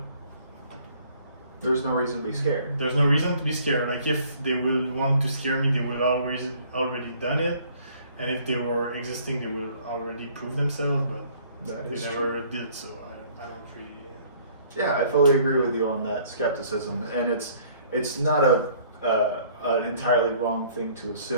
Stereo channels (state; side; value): inverted; both; correlation -0.57